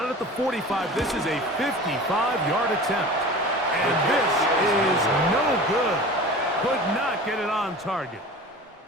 at the 45, this is a 55-yard attempt. And this is no good. Could not get it on target.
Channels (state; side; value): normal; both; correlation 0.37